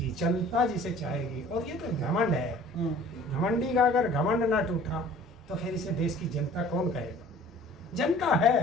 जनता जिसे चाहेगी, और ये तो घमंड है, घमंडी का अगर घमंड ना टूटा तो फिर इसे देश की जनता कौन कहेगा? जनता है,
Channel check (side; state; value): both; normal; correlation 0.49